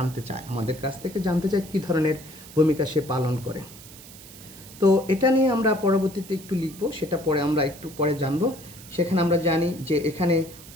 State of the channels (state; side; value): noise; right; hiss, 18 dB below the sound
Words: কাছ থেকে জানতে চায় কী ধরনের ভূমিকা সে পালন করে। তো এটা নিয়ে আমরা পরবর্তীতে একটু লিখব, সেটা পরে আমরা একটু পরে জানব। সেখানে আমরা জানি যে এখানে